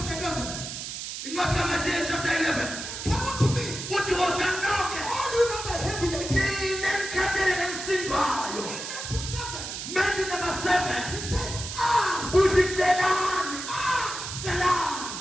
11. In Matthew chapter 11. Come on to me. What was that knock? All you know that heavy again. Matthew number 7. He says, ask. Who's it? That's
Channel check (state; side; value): noise; right; hiss, 7 dB below the sound